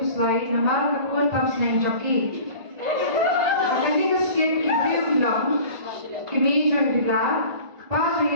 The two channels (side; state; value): left; late; 1.5 ms